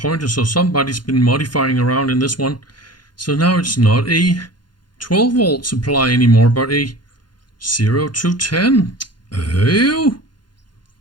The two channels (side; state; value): right; late; 0.71 ms